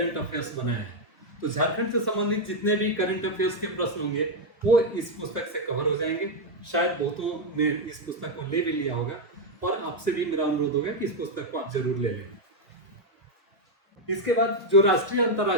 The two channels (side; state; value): both; normal; correlation 0.02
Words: अफेयर्स बनाया है। तो झारखंड से संबंधित जितने भी करंट अफेयर्स के प्रश्न होंगे वो इस पुस्तक से कवर हो जाएंगे। शायद बहुतों ने इस पुस्तक को ले भी लिया होगा और आपसे भी मेरा अनुरोध होगा कि इस पुस्तक को आप जरूर ले लें। इसके बाद जो राष्ट्रीय